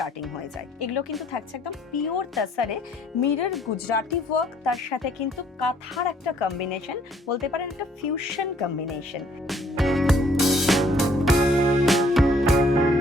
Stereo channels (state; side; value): normal; both; correlation 0.63